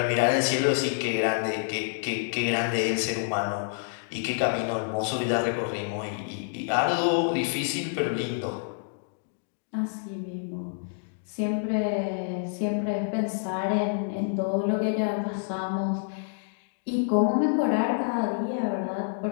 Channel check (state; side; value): silent; right; digital silence